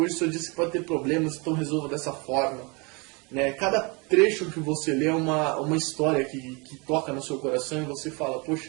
hoje o seu dia você pode ter problemas, então resolva dessa forma. Né? Cada trecho que você lê é uma história que toca no seu coração e você fala, poxa,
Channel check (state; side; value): quieter; left; 29.6 dB